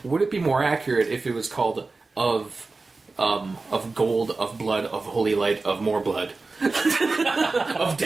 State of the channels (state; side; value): quieter; left; 3.7 dB